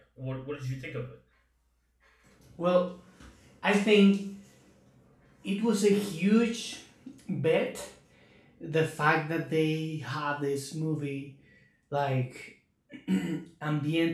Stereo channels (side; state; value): both; identical; correlation 1.00